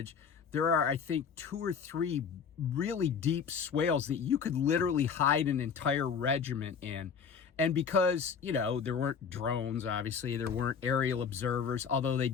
There are, I think, 2 or 3 really deep swales that you could literally hide an entire regiment in. And because, you know, there weren't drones, obviously, there weren't aerial observers, although they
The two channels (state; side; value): quieter; right; 6.5 dB